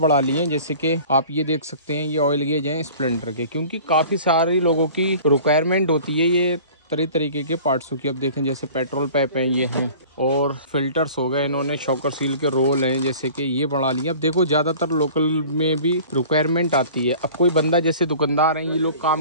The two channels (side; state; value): both; inverted; correlation -0.45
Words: ली हैं, जैसे कि आप ये देख सकते हैं, ये ऑयल गेज हैं स्प्लेंडर के, क्योंकि काफ़ी सारे लोगों की रिक्वायरमेंट होती है ये तरीके के पार्ट्सों की। अब देखें जैसे पेट्रोल पाइप हैं, ये हैं, और फिल्टर्स हो गए। इन्होंने शॉकर सील के रोल हैं, जैसे कि ये बढ़ा लिए। अब देखो ज़्यादातर लोकल में भी रिक्वायरमेंट आती है। अब कोई बंदा जैसे दुकानदार हैं, ये लोग